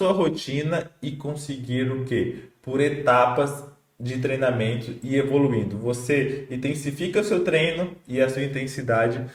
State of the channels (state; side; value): identical; both; correlation 1.00